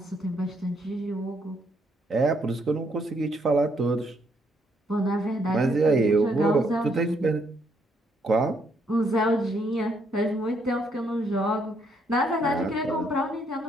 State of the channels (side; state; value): both; normal; correlation 0.72